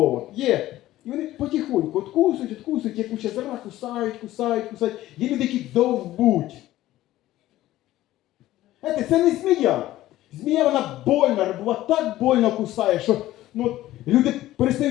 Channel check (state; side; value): quieter; right; 15.1 dB